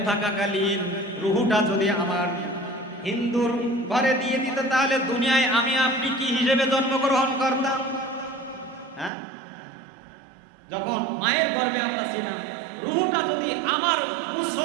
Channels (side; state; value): left; drops out; at 9.1 s